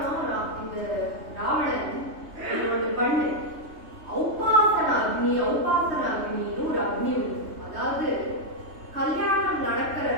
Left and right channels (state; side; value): late; left; 3.2 ms